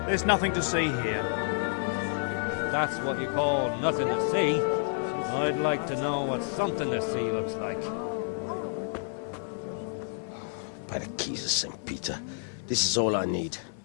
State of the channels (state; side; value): silent; right; 55 dB below the other